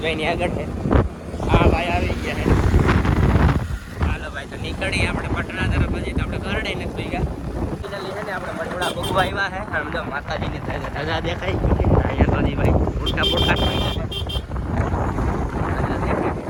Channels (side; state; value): both; identical; correlation 1.00